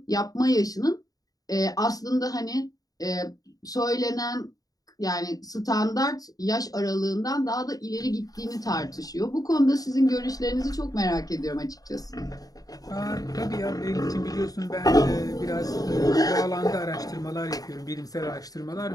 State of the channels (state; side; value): late; right; 0.18 ms